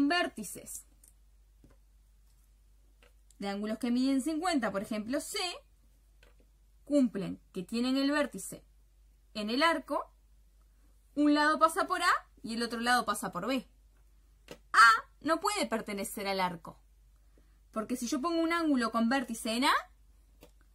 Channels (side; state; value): both; identical; correlation 1.00